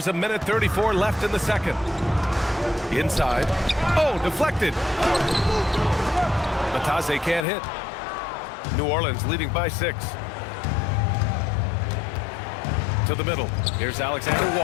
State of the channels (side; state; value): right; drops out; at 7.5 s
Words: a minute 34 left in the second. Inside. Oh, deflected. Batase can't hit. New Orleans leading by 6. To the middle. Here's Alexander